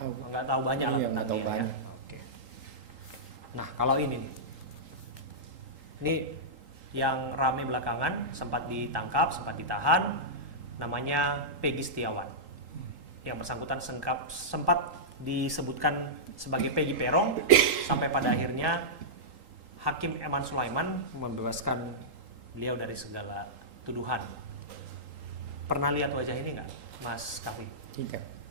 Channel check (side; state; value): left; late; 3.8 ms